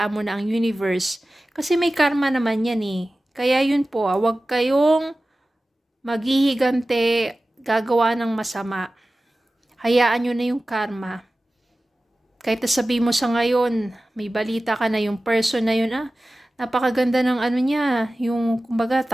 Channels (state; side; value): normal; both; correlation 0.96